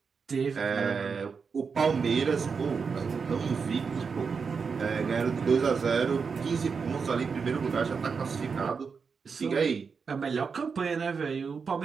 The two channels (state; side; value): quieter; left; 5.5 dB